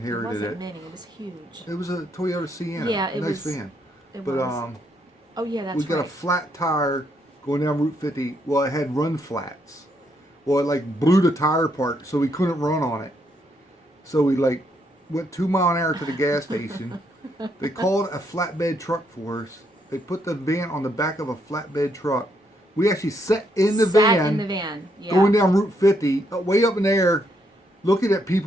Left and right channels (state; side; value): normal; both; correlation 0.75